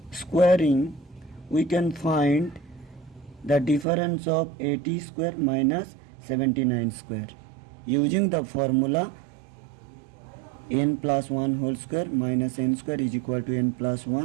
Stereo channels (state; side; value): drops out; left; at 3.9 s